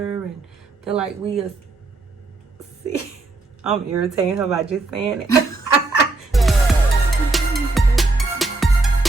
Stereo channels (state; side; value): quieter; left; 3.3 dB